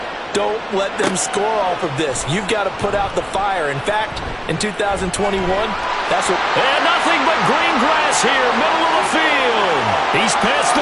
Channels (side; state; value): both; identical; correlation 1.00